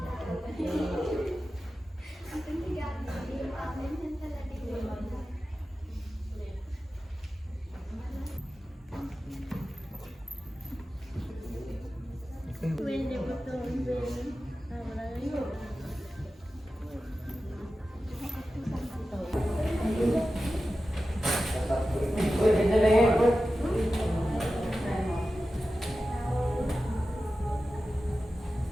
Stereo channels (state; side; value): normal; both; correlation 0.93